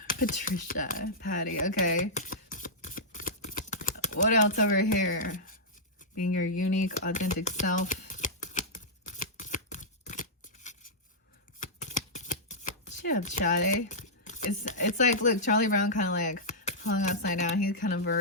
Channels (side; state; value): both; normal; correlation -0.10